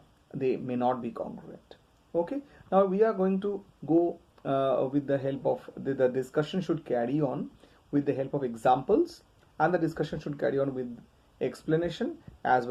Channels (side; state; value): both; identical; correlation 1.00